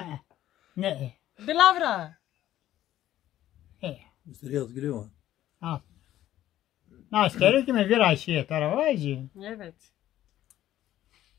Ne? Dilavra. Mr. Yazgülü var. Ha. Nas gerek mi biraz şey tarafı? Evet.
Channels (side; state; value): right; quieter; 13.1 dB